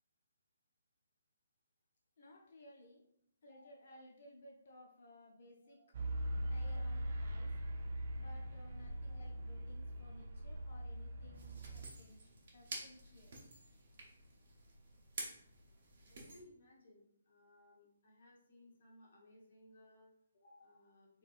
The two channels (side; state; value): both; inverted; correlation -0.89